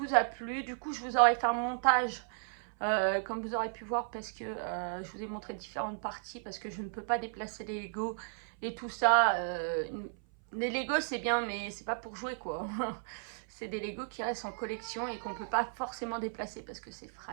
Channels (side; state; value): left; silent; 55 dB below the other